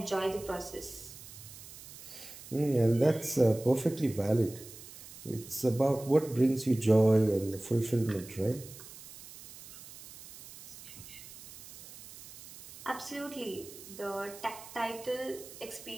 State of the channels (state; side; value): noise; right; hiss, 16 dB below the sound